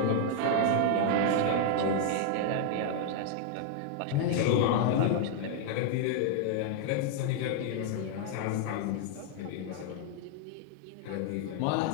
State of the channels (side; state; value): both; different; correlation 0.00